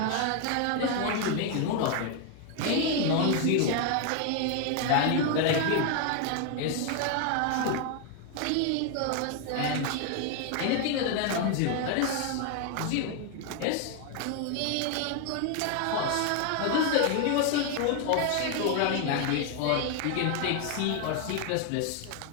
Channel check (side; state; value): both; different; correlation 0.01